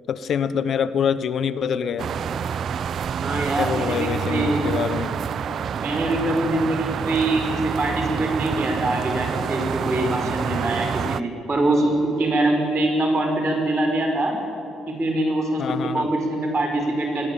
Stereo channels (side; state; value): both; normal; correlation 0.76